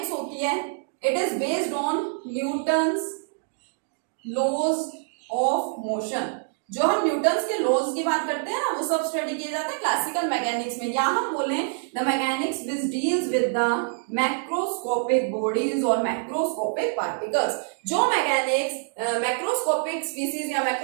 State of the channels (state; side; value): silent; left; digital silence